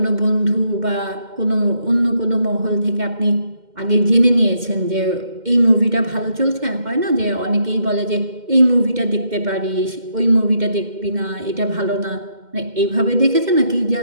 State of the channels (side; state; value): left; late; 2.1 ms